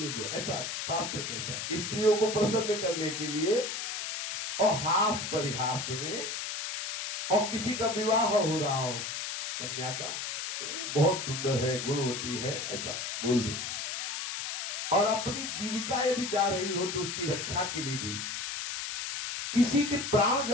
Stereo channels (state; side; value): noise; left; hiss, 4 dB below the sound